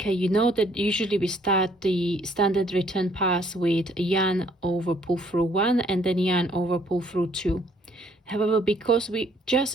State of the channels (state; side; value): normal; both; correlation 0.64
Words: you know that usually we start the standard return pass with yarn over pull through 1 and then yarn over pull through 2. However, because we just